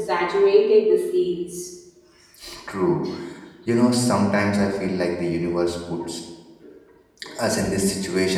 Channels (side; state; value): both; identical; correlation 1.00